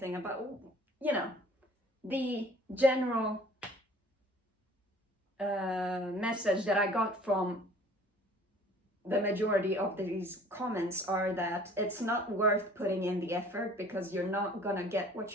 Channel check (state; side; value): normal; both; correlation 0.51